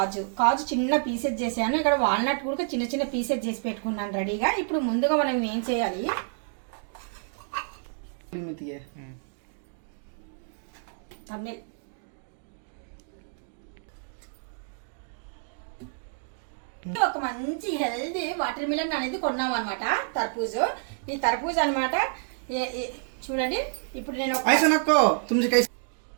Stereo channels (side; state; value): left; silent; digital silence